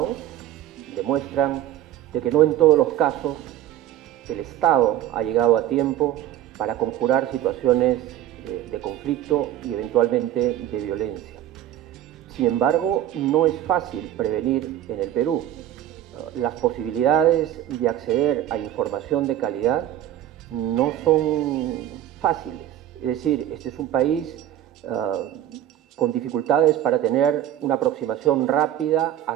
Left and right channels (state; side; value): quieter; left; 12.0 dB